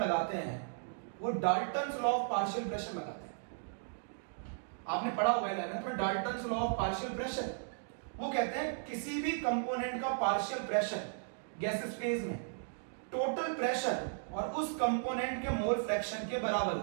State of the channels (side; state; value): left; silent; digital silence